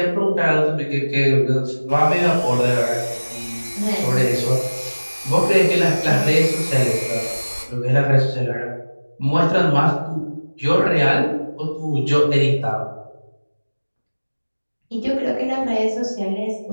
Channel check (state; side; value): inverted; both; correlation -1.00